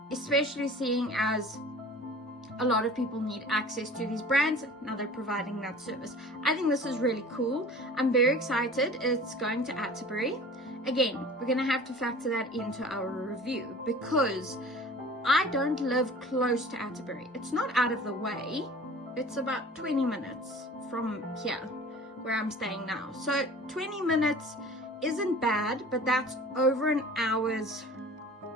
especially seeing as a lot of people need access to these brands. Now they're providing that service. I think this is really cool. I'm very excited. It's going to Atterbury. Again, we're going to have to factor that into our review because I don't live close to Atterbury. It's not out of the way. It's about 20 minutes from here where I'm staying now. So 20 minutes isn't bad, but that's over an hour's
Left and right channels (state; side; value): normal; both; correlation 0.43